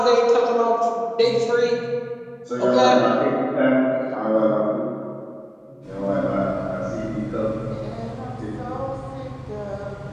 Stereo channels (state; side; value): identical; both; correlation 1.00